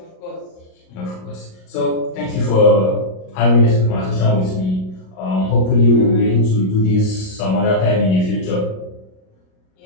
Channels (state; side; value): late; right; 38 ms